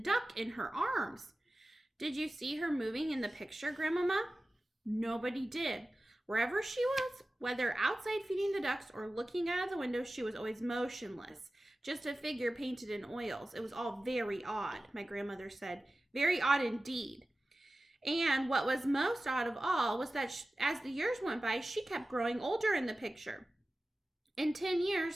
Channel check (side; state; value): both; normal; correlation 0.96